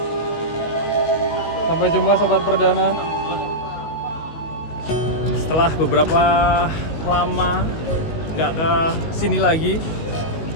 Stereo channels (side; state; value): right; late; 19 ms